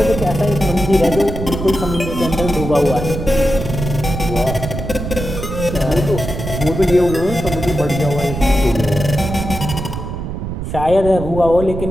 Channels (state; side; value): noise; right; rumble, 6 dB below the sound